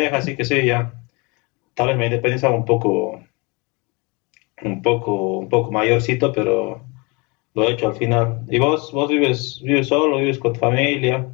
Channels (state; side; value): quieter; right; 28.4 dB